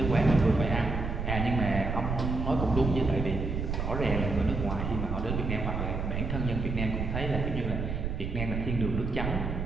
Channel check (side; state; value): right; noise; rumble, 3 dB below the sound